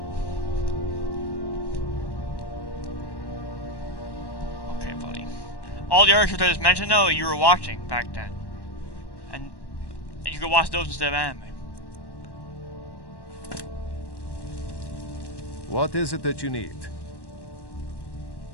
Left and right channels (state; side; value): late; right; 1.1 ms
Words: Okay, buddy. All the other shows I just mentioned, though, you were watching back then, and you could watch those instead of anime. What is it that you need?